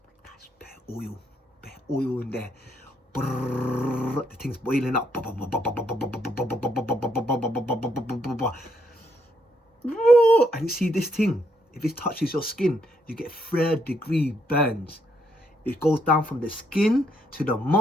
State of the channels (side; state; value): both; normal; correlation 0.74